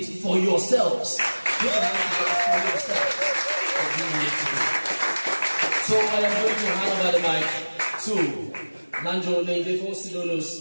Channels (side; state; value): both; inverted; correlation -1.00